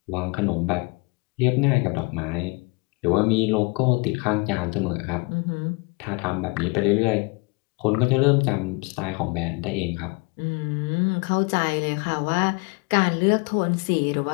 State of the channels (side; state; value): right; quieter; 28.7 dB